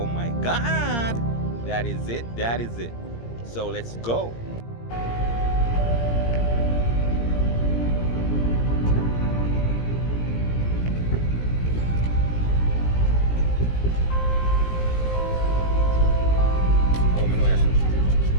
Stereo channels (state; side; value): late; right; 17 ms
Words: my God! That is it, that is it. So let's go.